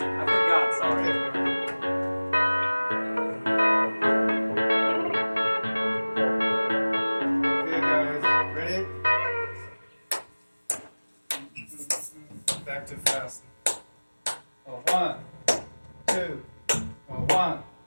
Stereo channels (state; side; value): inverted; both; correlation -1.00